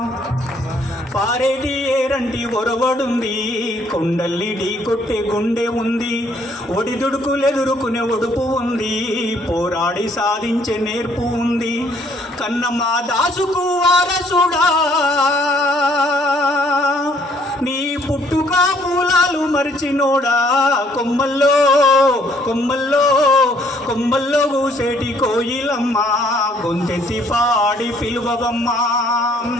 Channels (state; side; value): normal; both; correlation 0.64